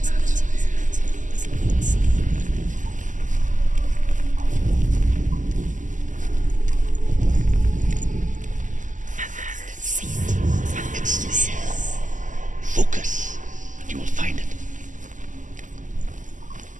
It's there. Focus, and you will find it.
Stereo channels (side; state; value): left; late; 0.37 ms